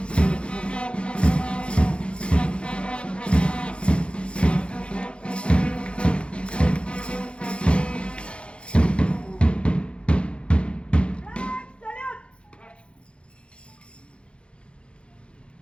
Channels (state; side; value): late; right; 0.058 ms